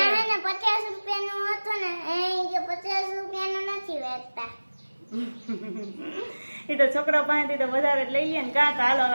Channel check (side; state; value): both; inverted; correlation -1.00